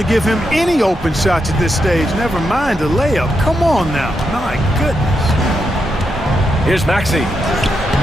to give him any open shots at this stage. Never mind a layup. Come on now. My goodness. Here's Maxey.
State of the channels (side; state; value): both; normal; correlation 0.83